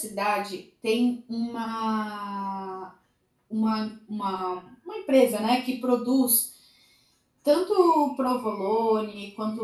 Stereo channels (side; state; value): both; identical; correlation 1.00